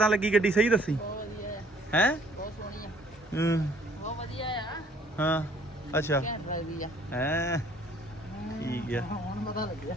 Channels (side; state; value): both; normal; correlation 0.59